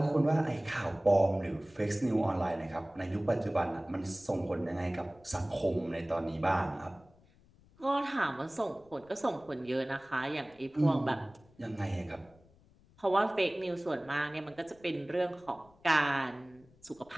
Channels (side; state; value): left; noise; rumble, 28 dB below the sound